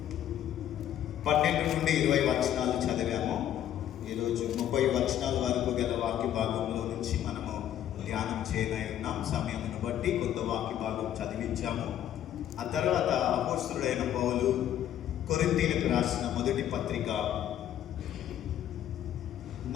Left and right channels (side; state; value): right; quieter; 11.1 dB